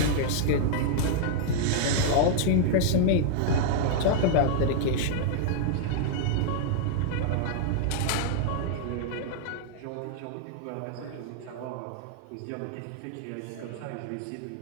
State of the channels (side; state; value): both; different; correlation -0.01